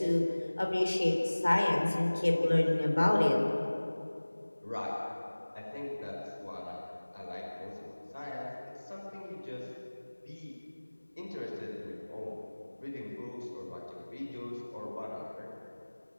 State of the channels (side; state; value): both; inverted; correlation -1.00